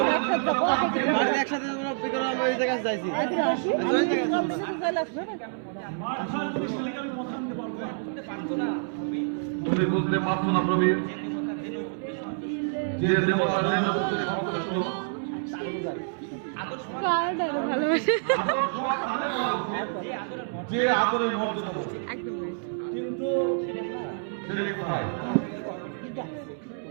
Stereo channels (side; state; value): left; silent; 60 dB below the other